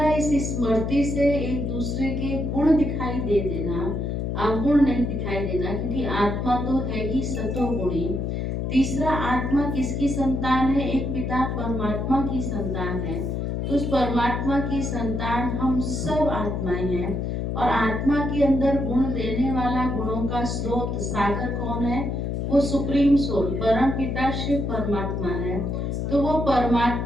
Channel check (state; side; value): noise; left; hum, 2 dB below the sound